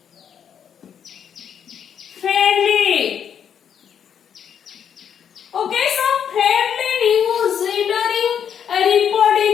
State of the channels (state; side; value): quieter; right; 8.3 dB